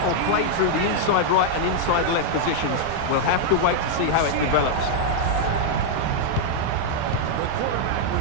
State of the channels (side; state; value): both; different; correlation -0.01